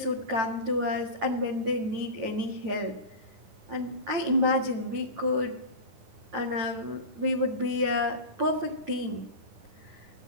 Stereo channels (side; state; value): left; late; 9.1 ms